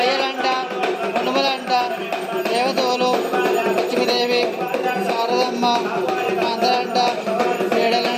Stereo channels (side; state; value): both; identical; correlation 1.00